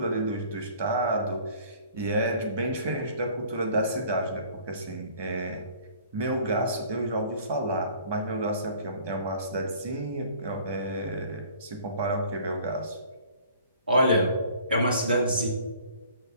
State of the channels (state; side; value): inverted; both; correlation -0.52